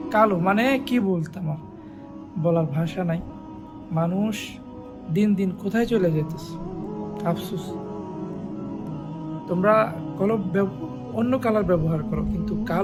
কালো, মানে কি বলতাম আর, বলার ভাষা নাই। মানুষ দিন দিন কোথায় চলে যেতেছে, আফসোস। তোমরা অন্য কালার ব্যবহার করো, কিন্তু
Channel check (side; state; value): both; identical; correlation 1.00